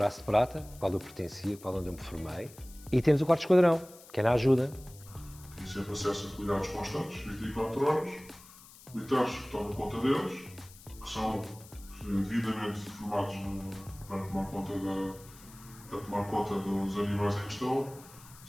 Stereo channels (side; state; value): left; noise; hiss, 21 dB below the sound